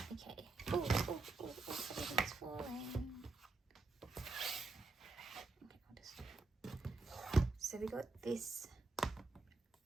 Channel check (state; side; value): quieter; left; 3.5 dB